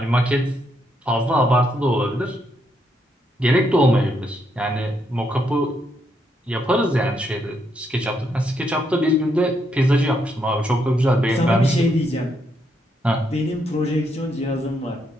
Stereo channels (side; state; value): both; normal; correlation 0.77